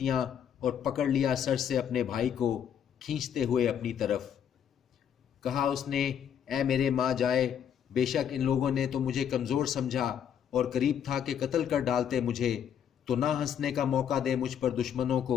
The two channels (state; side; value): quieter; right; 8.7 dB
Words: اور پکڑ لیا سر سے اپنے بھائی کو کھینچتے ہوئے اپنی طرف۔ کہا اس نے، اے میرے ماں جائے، بے شک ان لوگوں نے تو مجھے کمزور سمجھا اور قریب تھا کہ قتل کر ڈالتے مجھے، تو نہ ہنسنے کا موقع دے مجھ پر دشمنوں